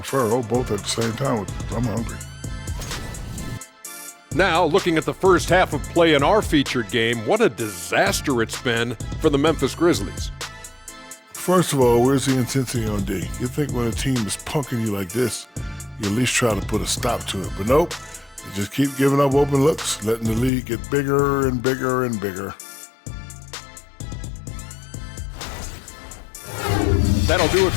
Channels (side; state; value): right; drops out; at 20.5 s